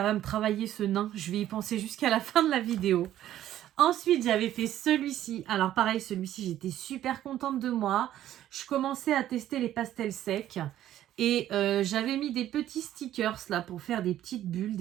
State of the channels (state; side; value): quieter; left; 12.5 dB